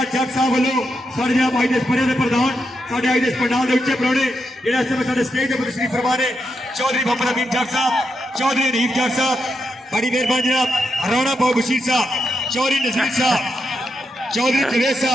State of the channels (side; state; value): both; normal; correlation 0.84